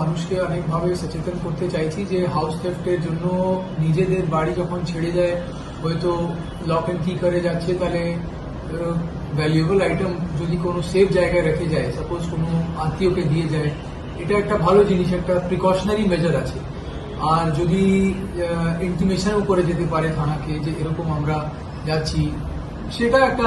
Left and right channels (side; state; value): both; identical; correlation 1.00